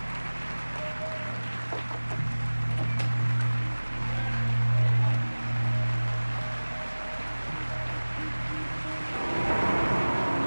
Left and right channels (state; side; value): inverted; both; correlation -1.00